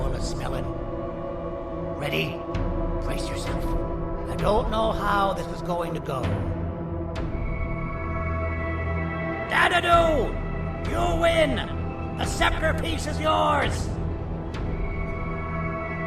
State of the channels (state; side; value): identical; both; correlation 1.00